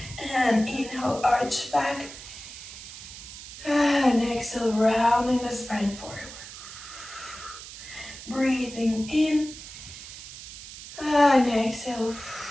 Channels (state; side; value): noise; right; hiss, 13 dB below the sound